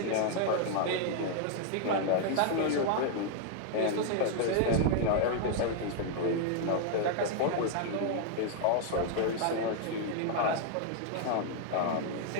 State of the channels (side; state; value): both; different; correlation 0.00